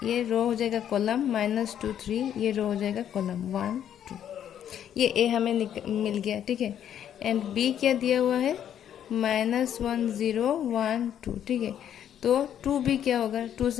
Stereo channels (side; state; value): right; quieter; 9.9 dB